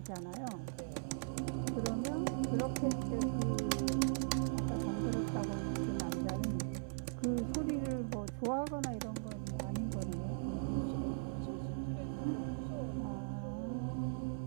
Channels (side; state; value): left; silent; 52 dB below the other